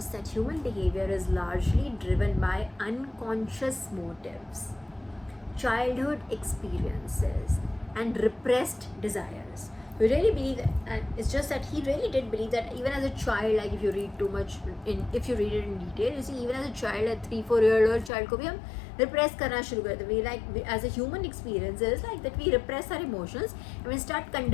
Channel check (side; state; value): right; drops out; at 18.1 s